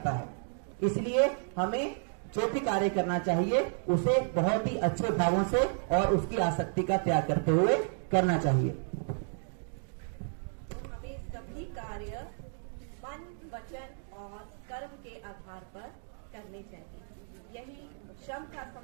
है। इसलिए हमें जो भी कार्य करना चाहिए उसे बहुत ही अच्छे भावों से और उसकी आसक्ति का त्याग करते हुए करना चाहिए। हमें सभी कार्य मन, वचन और कर्म के आधार पर करने चाहिए। यही श्रम का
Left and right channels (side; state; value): left; silent; 56 dB below the other